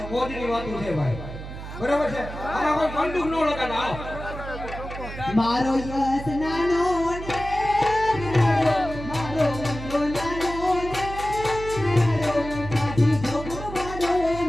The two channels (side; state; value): right; noise; hum, 10 dB below the sound